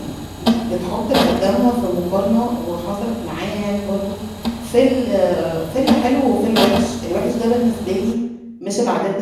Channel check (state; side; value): identical; both; correlation 1.00